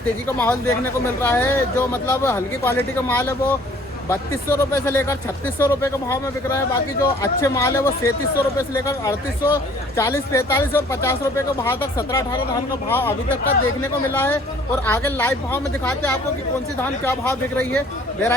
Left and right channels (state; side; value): normal; both; correlation 0.55